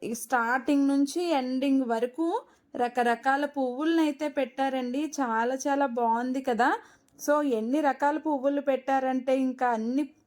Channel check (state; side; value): identical; both; correlation 1.00